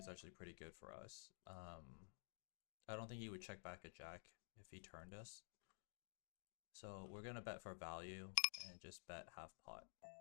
actually pretty good for us. I don't think he would check back a jack if he turned us. So we're gonna bet for value and just bet half pot.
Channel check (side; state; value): right; silent; digital silence